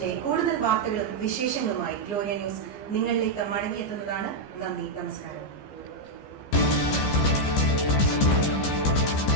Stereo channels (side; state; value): right; late; 15 ms